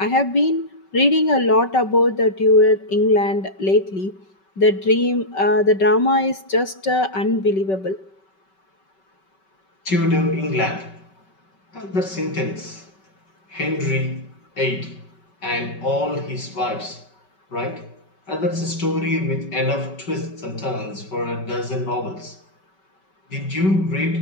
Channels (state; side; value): late; right; 5.3 ms